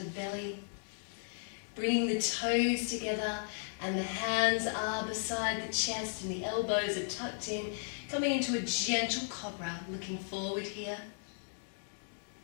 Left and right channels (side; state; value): right; silent; digital silence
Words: belly. Bringing the toes together and the hands are beside the chest and the elbows are tucked in. Coming into a gentle Cobra, looking forward here.